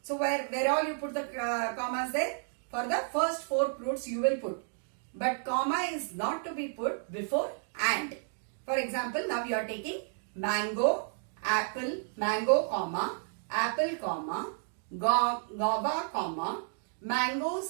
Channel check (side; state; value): left; silent; digital silence